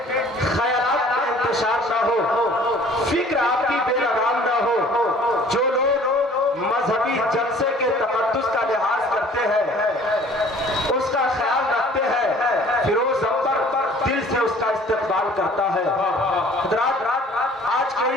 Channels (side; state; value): both; normal; correlation 0.52